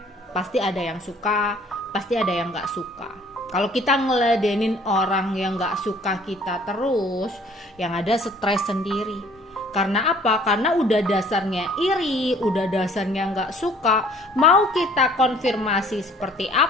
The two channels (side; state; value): both; normal; correlation 0.56